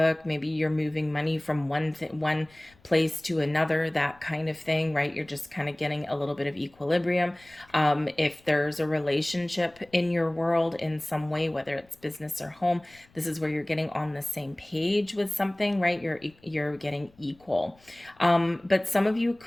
Maybe you're moving money from one place to another, that kind of thing, right? You're just kind of getting a little bit of equilibrium. If there's a relationship in your world in some way, whether it's business or home, this is where you're getting on the same page with something, right? You're getting equal. But some of you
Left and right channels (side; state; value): left; noise; rumble, 30 dB below the sound